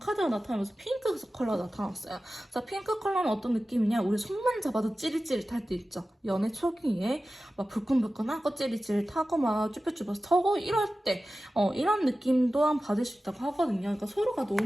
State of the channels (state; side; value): normal; both; correlation 0.95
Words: 나타나면서 핑크 컬러가 나타났어요. 자, 핑크 컬러는 어떤 느낌이냐? 우리 손만 잡아도 찌릿찌릿할 때 있죠. 연애 초기에 막 불끈불끈하고 찌릿찌릿하고 막 쭈뼛쭈뼛 터고 이럴 때 이런 느낌 또한 받을 수 있다고 하거든요. 그러니까 서로가